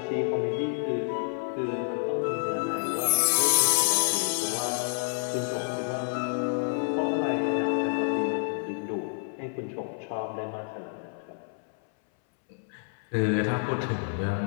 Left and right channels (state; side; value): silent; right; 59 dB below the other